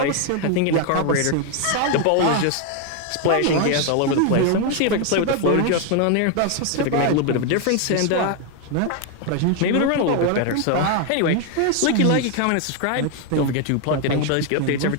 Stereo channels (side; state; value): both; different; correlation 0.01